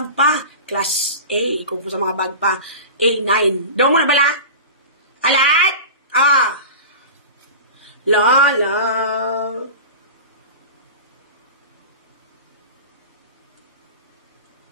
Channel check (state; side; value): inverted; both; correlation -0.32